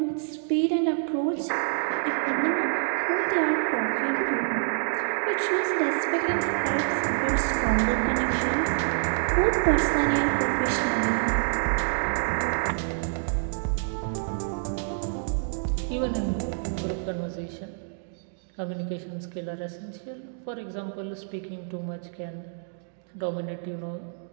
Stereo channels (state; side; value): silent; left; digital silence